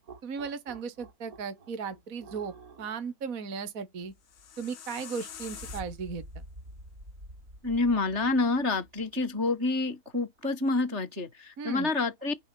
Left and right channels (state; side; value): late; left; 3.3 ms